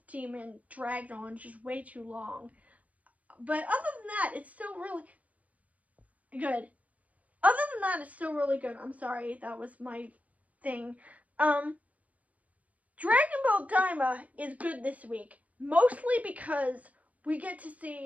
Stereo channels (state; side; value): late; left; 0.070 ms